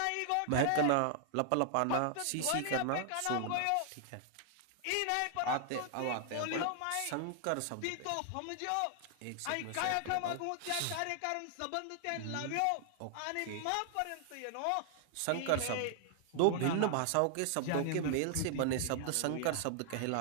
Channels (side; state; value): both; different; correlation 0.00